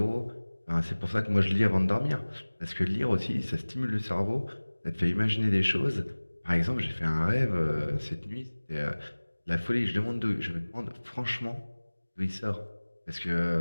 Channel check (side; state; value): both; inverted; correlation -1.00